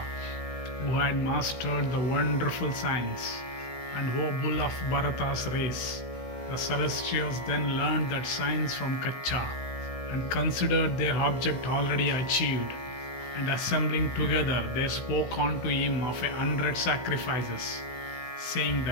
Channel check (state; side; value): late; right; 16 ms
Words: who had mastered the wonderful science, and O bull of Bharata's race. The celestials then learned that science from Kacha, and considered their object already achieved, and assembling together they spoke unto him of 100 sacrifices, saying,